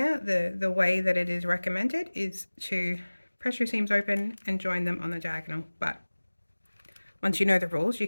The way that it is recommended is to press your seams open and join them on the diagonal, but once you know the rules, you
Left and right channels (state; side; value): inverted; both; correlation -1.00